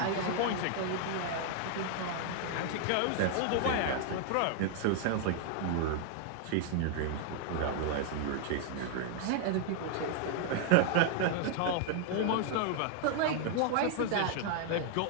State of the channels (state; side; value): different; both; correlation 0.00